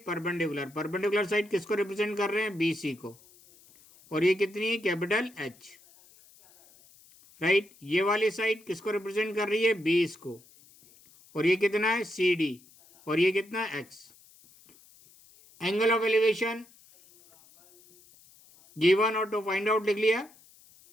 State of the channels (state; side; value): noise; left; hiss, 27 dB below the sound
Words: परपेंडिकुलर, परपेंडिकुलर साइड किसको रिप्रेजेंट कर रहे हैं? BC को। और ये कितनी है? Capital H, right. ये वाली साइड किसको रिप्रेजेंट कर रही है? बेस को। और ये कितना है? CD। और ये कितना है? X। Angle of elevation given और टू फाइंड आउट लिख लिया।